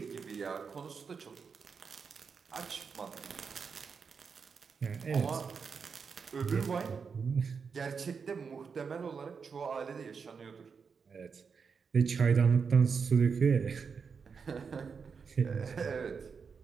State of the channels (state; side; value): quieter; left; 5.8 dB